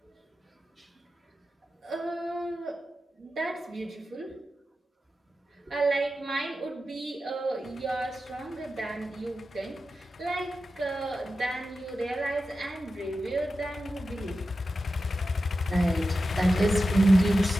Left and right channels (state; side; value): normal; both; correlation 0.92